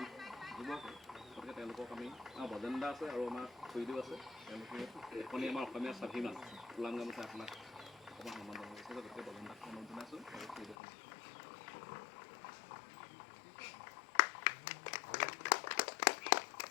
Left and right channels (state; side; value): drops out; right; at 10.8 s